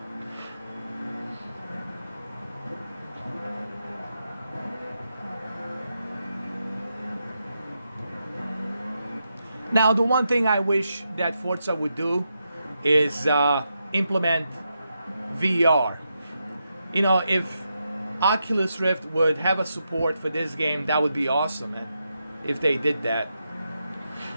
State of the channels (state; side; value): inverted; both; correlation -0.85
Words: Now, the one thing I wish that Forza would do is implement VR. You know, if Oculus Rift would have a support for this game, that would be awesome, man, if they did that.